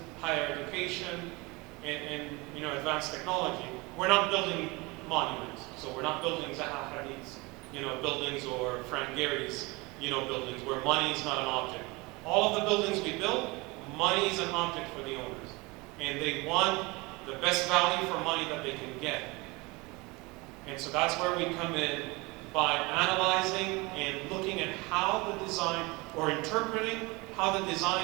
higher education, and advanced technology. We're not building monuments, so we're not building Zaha Hadid's, buildings or Frank Gehry's, buildings where money is not an object. All of the buildings we build, money is an object for the owners, and they want the best value for money that they can get. And so that's where we come in by analyzing and looking at how the design, or interpreting how the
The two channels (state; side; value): quieter; left; 24.9 dB